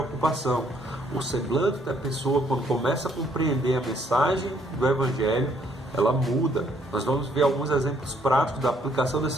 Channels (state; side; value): normal; both; correlation 0.67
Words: O semblante da pessoa, quando começa a compreender a mensagem do Evangelho, ela muda. Nós vamos ver alguns exemplos práticos da aplicação